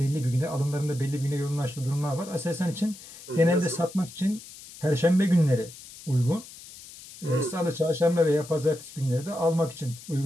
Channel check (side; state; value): left; noise; hiss, 17 dB below the sound